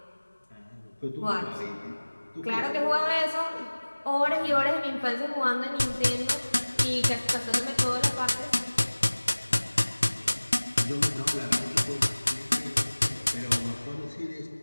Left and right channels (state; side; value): inverted; both; correlation -1.00